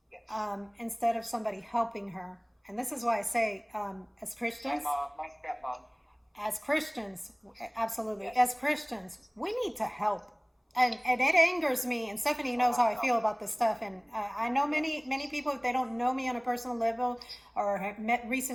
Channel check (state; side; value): identical; both; correlation 1.00